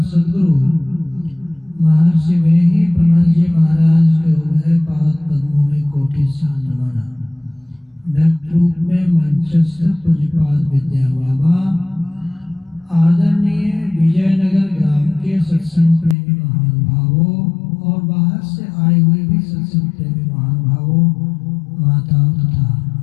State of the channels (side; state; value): right; drops out; at 16.2 s